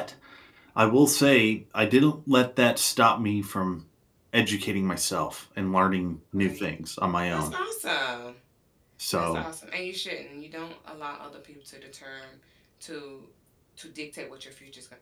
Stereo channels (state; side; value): identical; both; correlation 1.00